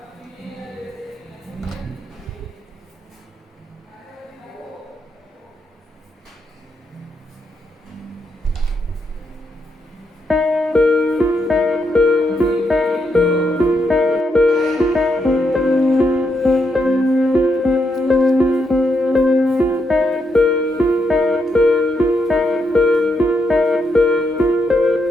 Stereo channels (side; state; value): both; normal; correlation 0.80